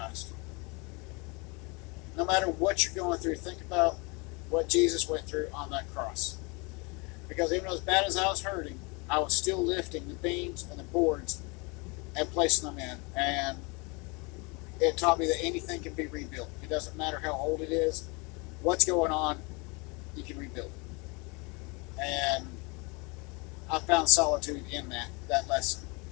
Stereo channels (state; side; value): quieter; right; 29.3 dB